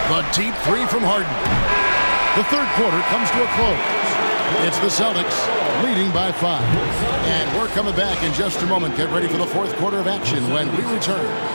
The deep 3 from Harden. The third quarter comes to a close. It's the Celtics leading by 5. And we're coming back in just a moment. Get ready for the fourth quarter of action when we return.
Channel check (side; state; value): both; inverted; correlation -1.00